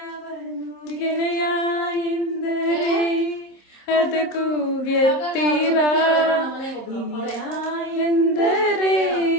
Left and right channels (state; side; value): late; right; 27 ms